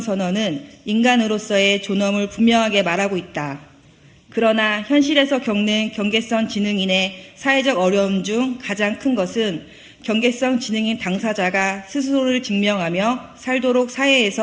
인간으로서의 존엄을 분명하게 말하고 있다. 그러나 현실에서 겪는 경계선 지능인의 사회적 어려움 중 가장 큰 것은 경계선 지능인 당사자가 스스로를 증명하며 살도록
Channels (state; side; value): identical; both; correlation 1.00